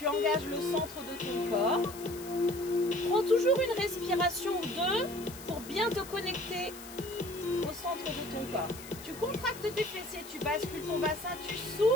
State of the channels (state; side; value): noise; left; hiss, 15 dB below the sound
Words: engages le centre de ton corps. Prends toujours une respiration ou 2 pour bien te connecter au centre de ton corps. Tu contractes tes fessiers, tu bascules ton bassin, tu